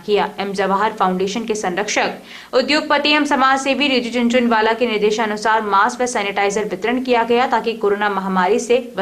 किया। एम जवाहर फाउंडेशन के संरक्षक उद्योगपति एवं समाज सेवी रिजू झुनझुनवाला के निर्देशानुसार मास्क व सैनिटाइजर वितरण किया गया ताकि कोरोना महामारी से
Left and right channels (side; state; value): both; identical; correlation 1.00